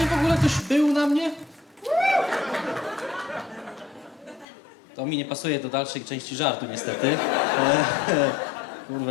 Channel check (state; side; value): drops out; right; at 4.5 s